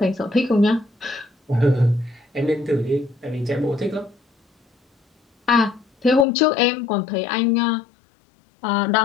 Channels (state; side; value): drops out; right; at 6.2 s